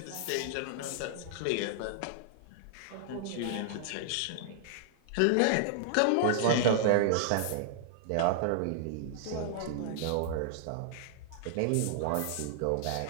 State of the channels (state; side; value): different; both; correlation -0.01